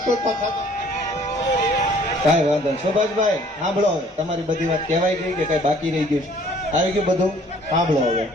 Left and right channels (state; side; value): normal; both; correlation 0.57